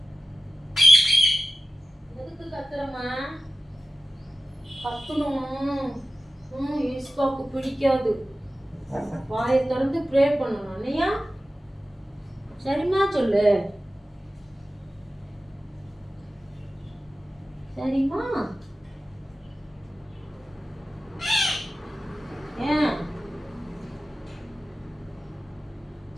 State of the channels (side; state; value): both; normal; correlation 0.93